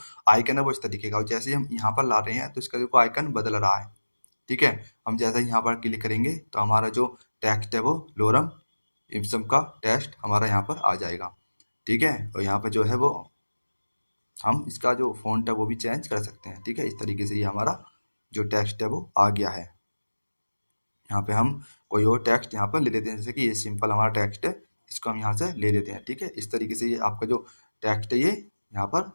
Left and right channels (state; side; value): inverted; both; correlation -1.00